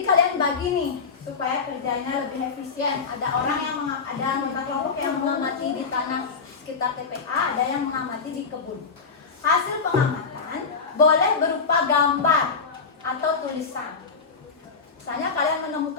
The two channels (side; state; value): right; quieter; 5.1 dB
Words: kalian bagi nih supaya kerjanya lebih efisien. Ada orang yang ada anggota kelompok yang mengamati di tanah sekitar TPA, ada yang mengamati di kebun. Hasil pengamatan boleh berupa gambar atau tulisan. Misalnya kalian